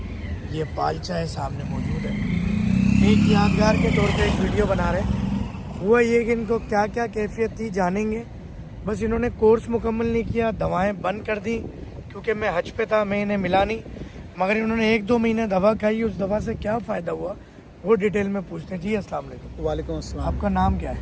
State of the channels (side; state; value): both; identical; correlation 1.00